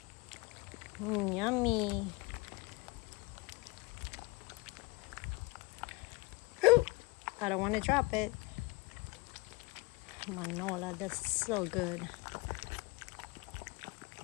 Yummy. Ooh, I don't want to drop it. Manola, that's so good.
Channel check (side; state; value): right; quieter; 25.3 dB